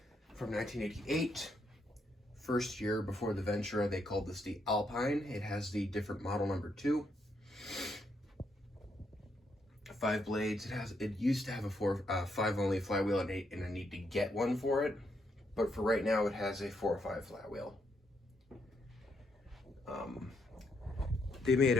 From 1988, first year before the Ventura, they called this the Alpine. It has the different model number 2. 5 blades. It used to have a 5 only flywheel, and I need to get one for it. But for right now, it has a 4 or 5 flywheel. They made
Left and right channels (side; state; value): both; normal; correlation 0.77